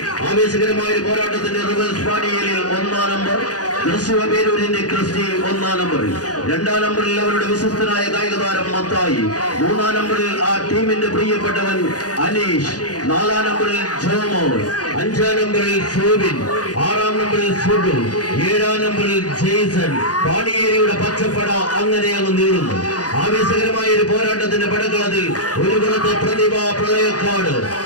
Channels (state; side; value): late; right; 0.68 ms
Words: ആവേശകരമായ ഒരു പോരാട്ടത്തിന്റെ റിവൽസ് പാണിയേലിൽ 1-ാം നമ്പർ തൃശ്ശൂരിന്റെ ക്രിസ്റ്റി 1-ാം നമ്പറിൽ, 2-ാം നമ്പറിൽ അവരുടെ വിശ്വസ്തനായ കായിക താരം മത്തായി, 3-ാം നമ്പറിൽ ആ ടീമിന്റെ പ്രിയപ്പെട്ടവൻ അനീഷ്, 4-ാം നമ്പറിൽ ജോമോൾ, 5-ാം നമ്പറിൽ സോബിൻ, 6-ാം നമ്പറിൽ സുഡു, 7-ാം നമ്പറിൽ ജെയ്സൺ. പാണിയേരിയുടെ പച്ചപ്പട അങ്ങനെ അങ്ങ് നീളുന്നു. ആവേശകരമായ ഒരു പോരാട്ടത്തിന്റെ പടക്കളത്തിൽ ഒരു പുറത്ത് പ്രതിഭാ പ്രളയക്കാട്